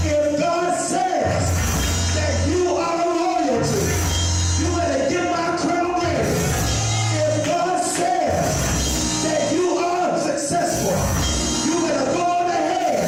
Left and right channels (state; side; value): identical; both; correlation 1.00